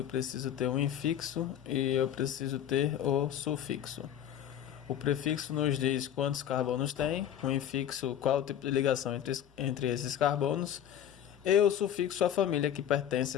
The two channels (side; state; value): right; quieter; 10.2 dB